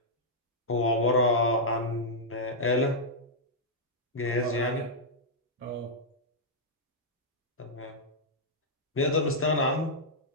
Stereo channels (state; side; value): normal; both; correlation -0.08